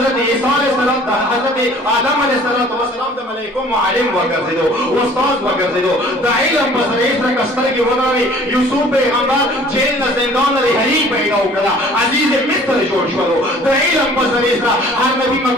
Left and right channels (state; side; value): normal; both; correlation 0.52